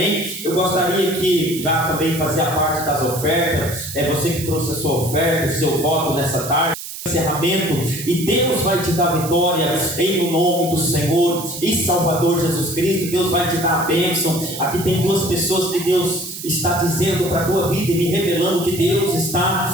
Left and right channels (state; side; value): noise; right; hiss, 10 dB below the sound